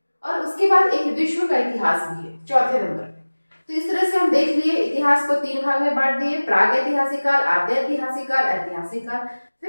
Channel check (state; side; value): inverted; both; correlation -1.00